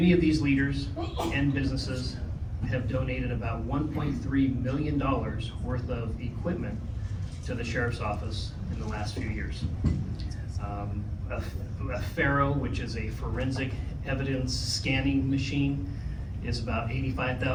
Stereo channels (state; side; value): identical; both; correlation 1.00